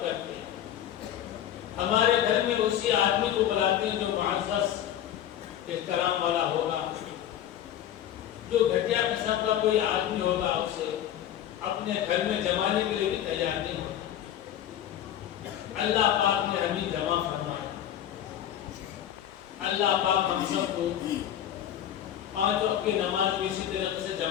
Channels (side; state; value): right; quieter; 11.0 dB